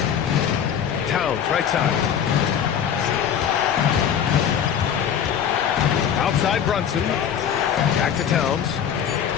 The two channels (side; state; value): right; quieter; 8.5 dB